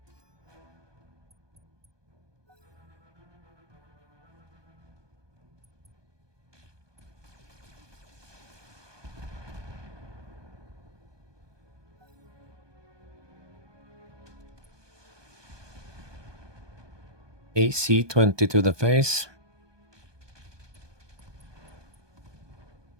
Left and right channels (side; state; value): left; late; 1.2 ms